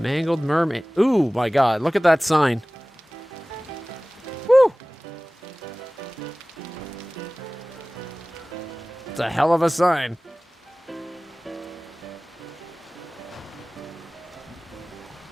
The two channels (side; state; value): both; normal; correlation 0.98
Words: Mermaid. Ooh, my God. Look at that sign. Woo! It's a hell of a sign.